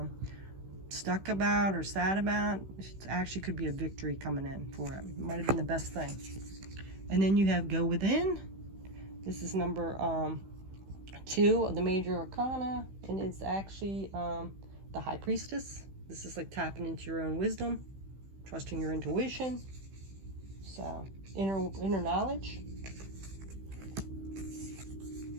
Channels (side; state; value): left; late; 15 ms